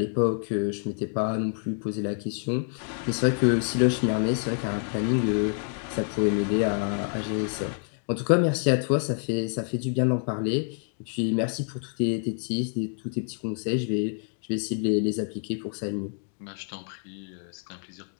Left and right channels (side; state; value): right; silent; 60 dB below the other